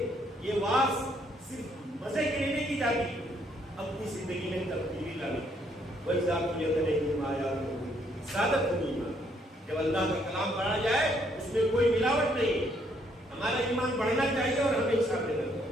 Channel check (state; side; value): normal; both; correlation 0.69